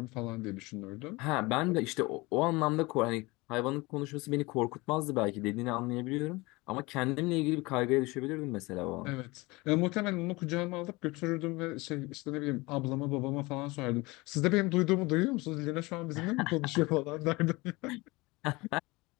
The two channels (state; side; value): quieter; right; 23.2 dB